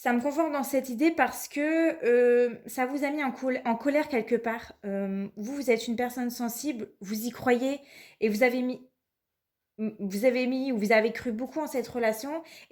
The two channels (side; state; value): both; identical; correlation 1.00